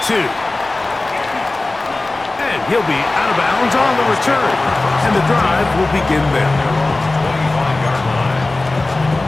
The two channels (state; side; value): quieter; right; 3.0 dB